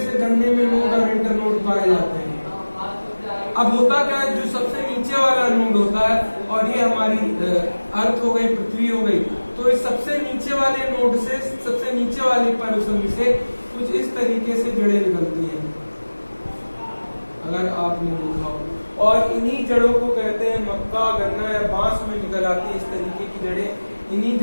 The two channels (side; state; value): both; inverted; correlation -1.00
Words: गन्ने में नोड और इंटरनोड पाए जाते हैं। अब होता क्या है, जो सबसे नीचे वाला नोड होता है और ये हमारी अर्थ हो गई, पृथ्वी हो गई, तो इस सबसे नीचे वाले नोड से, सबसे नीचे वाले पर्सन से कुछ इस तरीके से जड़ें निकलती हैं, अगर आपने देखा हो। और इन्हीं जड़ों को कहते हैं मक्का, गन्ना या बांस में निकल आती है इस तरीके की जड़ें। इन्हीं